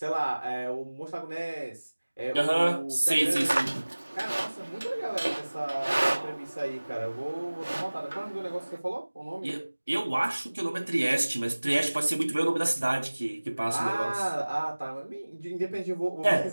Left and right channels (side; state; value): both; inverted; correlation -1.00